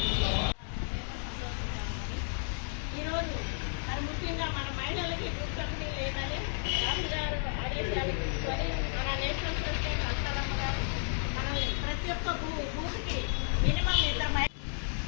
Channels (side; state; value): right; silent; 56 dB below the other